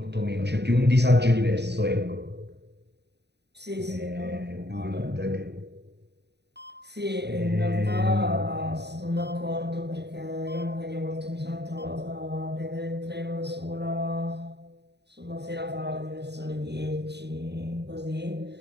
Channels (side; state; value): left; late; 0.49 ms